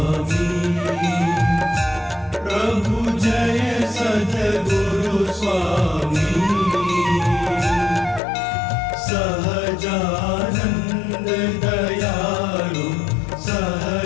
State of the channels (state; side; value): drops out; right; at 8.2 s